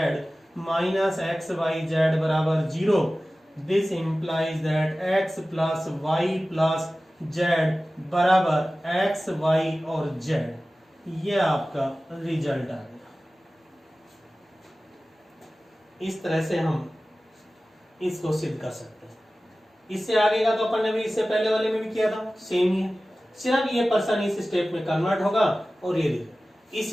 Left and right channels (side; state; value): both; normal; correlation 0.96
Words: minus x y z बराबर 0। This implies that x plus y plus z बराबर x y और z. ये आपका result आ गया। इस तरह से हम इसको सिद्ध कर सकते हैं। इससे आगे का तो अपन ने भी इससे पहले वाले में भी किया था, सेम ही है। सिर्फ ये पर्सन इस स्टेप में कन्वर्ट होगा और ये देखिए